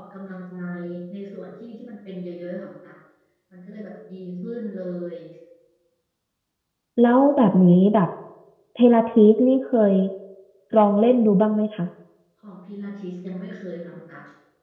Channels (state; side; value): identical; both; correlation 1.00